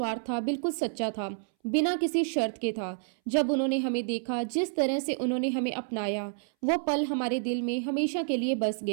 था, बिल्कुल सच्चा था, बिना किसी शर्त के था। जब उन्होंने हमें देखा, जिस तरह से उन्होंने हमें अपनाया, वो पल हमारे दिल में हमेशा के लिए बस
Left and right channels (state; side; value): silent; left; 58 dB below the other